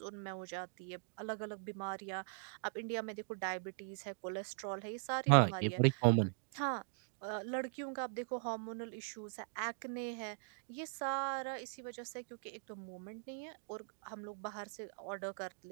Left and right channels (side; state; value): left; silent; digital silence